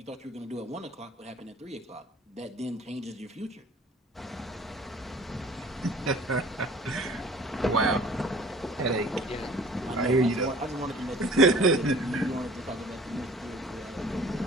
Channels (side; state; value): both; normal; correlation 0.49